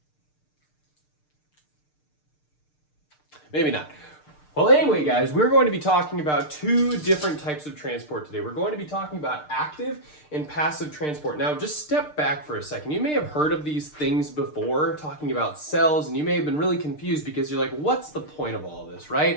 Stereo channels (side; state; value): right; late; 6.6 ms